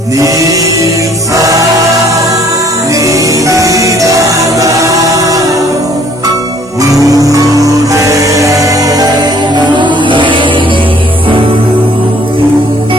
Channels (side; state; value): both; normal; correlation 0.59